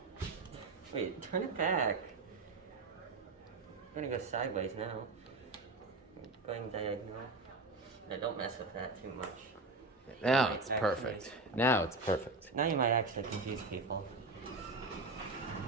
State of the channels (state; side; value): quieter; left; 3.3 dB